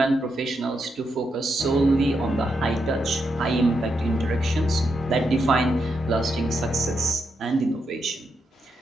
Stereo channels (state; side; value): normal; both; correlation 0.82